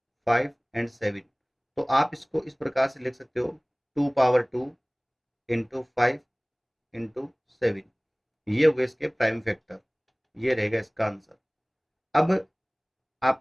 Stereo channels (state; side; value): identical; both; correlation 1.00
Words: 5 एंड 7। तो आप इसको इस प्रकार से लिख सकते हो, 2 पावर 2 इंटू 5 इंटू 7। ये हो गए इसके प्राइम फैक्टर, ये रहेगा इसका आंसर। अब